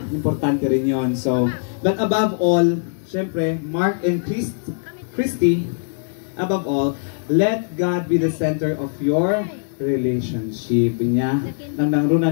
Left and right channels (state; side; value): silent; right; digital silence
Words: importante rin yon. So, but above all, syempre, Mark and Christy, above all, let God be the center of your relationship niya. Nang nangruna